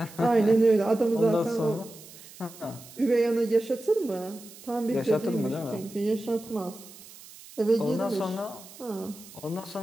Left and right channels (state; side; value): noise; right; hiss, 19 dB below the sound